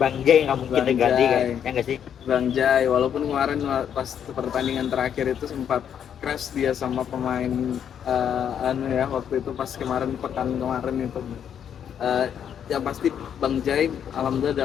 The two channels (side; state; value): right; quieter; 8.7 dB